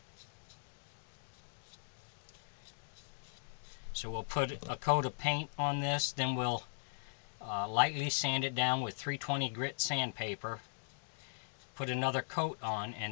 So we'll put a coat of paint on this, then we'll lightly sand it down with 320 grit sandpaper, put another coat on,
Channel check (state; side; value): silent; right; digital silence